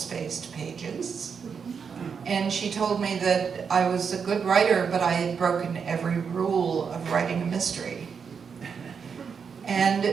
pages. And she told me that I was a good writer, but I had broken every rule of writing a mystery.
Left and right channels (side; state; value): left; quieter; 6.3 dB